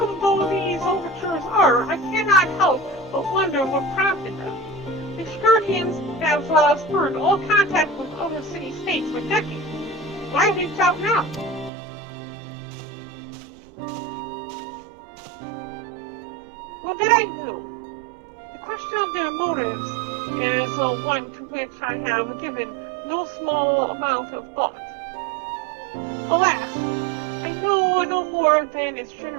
though these overtures are, I cannot help but wonder what prompted them. The Shkurtians have spurned all contact with other city-states for decades. Why reach out now? Well, that I knew. I have given no small amount of thought. Alas, I know no more than is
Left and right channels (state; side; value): drops out; left; at 11.7 s